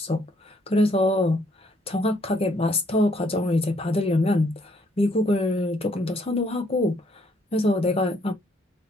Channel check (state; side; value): normal; both; correlation 0.68